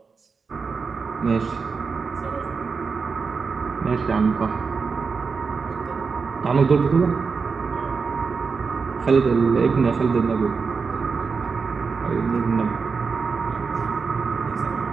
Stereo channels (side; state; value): left; quieter; 5.0 dB